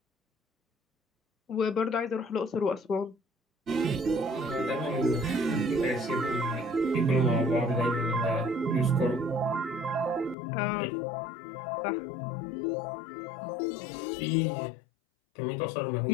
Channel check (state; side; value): drops out; right; at 10.4 s